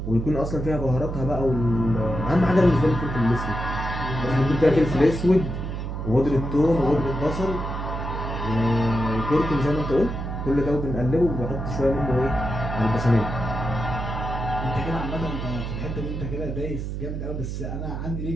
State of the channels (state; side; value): noise; right; hum, 5 dB below the sound